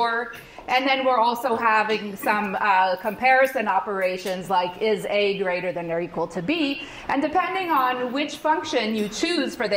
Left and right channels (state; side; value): identical; both; correlation 1.00